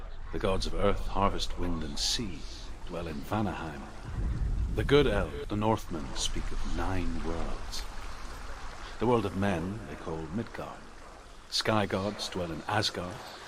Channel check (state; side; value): identical; both; correlation 1.00